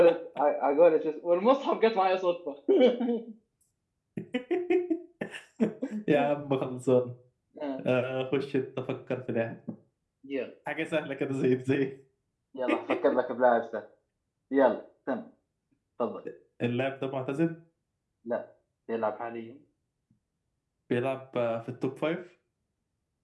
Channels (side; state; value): both; identical; correlation 1.00